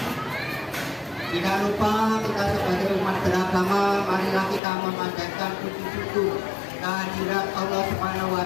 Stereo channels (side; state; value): right; drops out; at 4.6 s